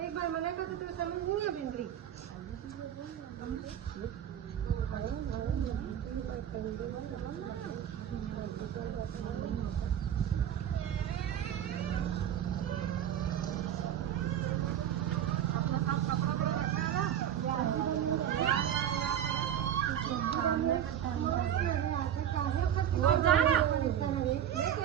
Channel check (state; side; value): quieter; left; 10.1 dB